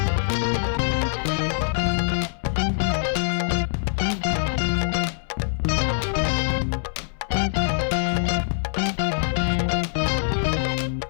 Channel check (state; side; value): silent; right; 63 dB below the other